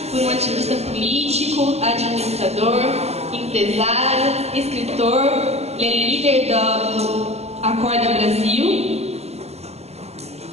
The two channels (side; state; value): left; late; 0.30 ms